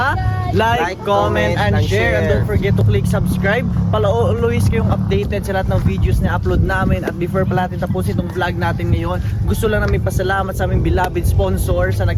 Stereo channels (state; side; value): identical; both; correlation 1.00